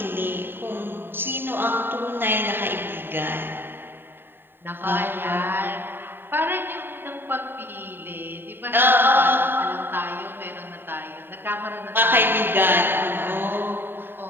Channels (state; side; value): late; left; 0.099 ms